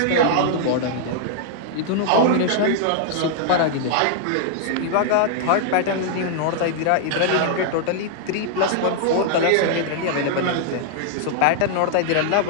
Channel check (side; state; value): both; different; correlation -0.01